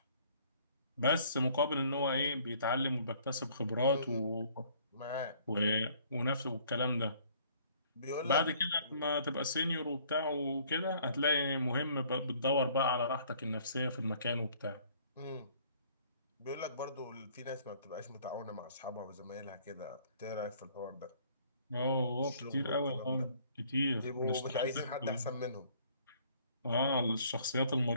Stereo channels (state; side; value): inverted; both; correlation -0.58